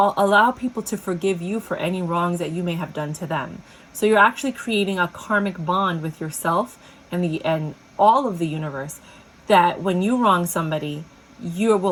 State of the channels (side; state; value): both; identical; correlation 1.00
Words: people to forgive you for any wrongs that you may have done to them. So you're actually creating a karmic bond with yourself and all of the universe, that when you wrong somebody, you